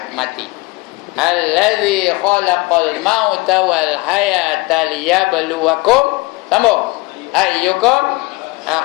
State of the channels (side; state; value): right; quieter; 24.1 dB